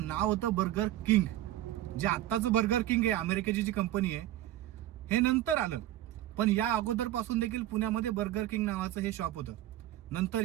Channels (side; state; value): left; quieter; 14.1 dB